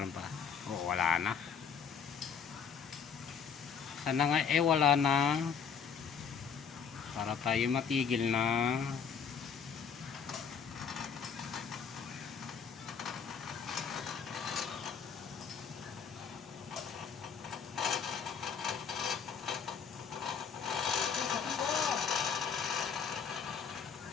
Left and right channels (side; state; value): right; quieter; 6.7 dB